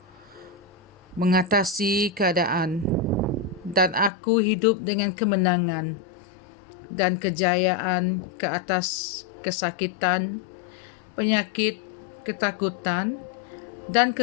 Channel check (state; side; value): drops out; right; at 4.1 s